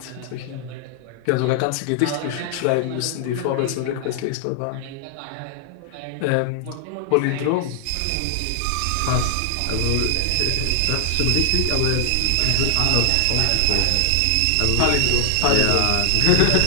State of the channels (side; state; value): both; different; correlation 0.00